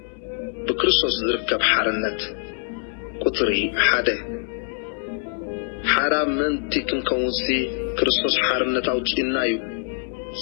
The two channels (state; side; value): silent; right; 63 dB below the other